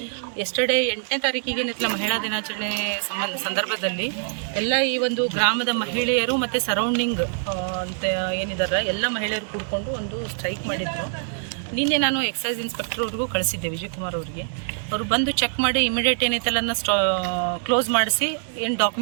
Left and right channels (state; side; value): silent; left; 59 dB below the other